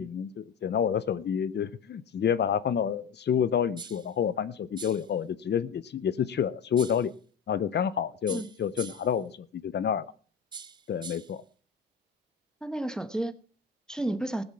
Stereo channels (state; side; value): quieter; right; 6.7 dB